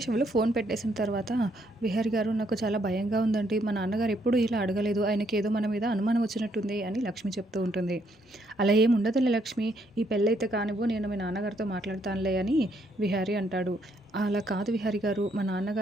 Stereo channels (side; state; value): both; normal; correlation 0.72